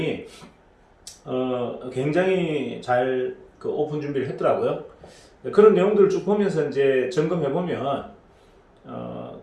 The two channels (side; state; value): both; identical; correlation 1.00